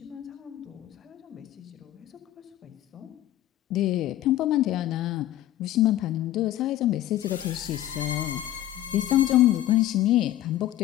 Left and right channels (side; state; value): right; quieter; 13.6 dB